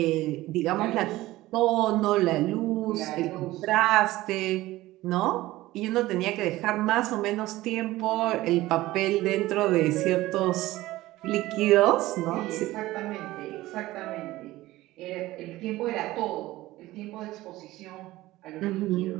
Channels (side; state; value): left; quieter; 17.4 dB